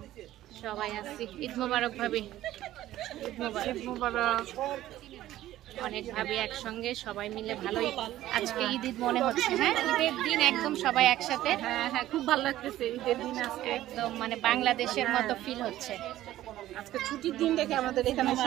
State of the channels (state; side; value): quieter; left; 14.2 dB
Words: সবাই আসছি। ঈদ মোবারক ভাবি, ঈদ মোবারক। ঈদ মোবারক। অনেক ভাবি একসঙ্গে সবাই মিলে, ভালোই আজকে ঈদ ঈদ মনে হচ্ছে। হ্যাঁ, ঈদের দিন একদম সবাই একসাথে। হ্যাঁ হ্যাঁ, খুব ভালো লাগতেছে ঈদের দিন আজকে, একদম মানে বাংলাদেশের মতো ফিল হচ্ছে। আজকে ছুটির দিন দেখে আমাদের এখানে